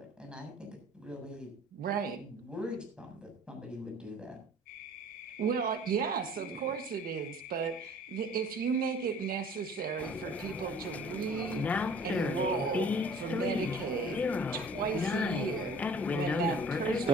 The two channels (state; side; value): normal; both; correlation 0.49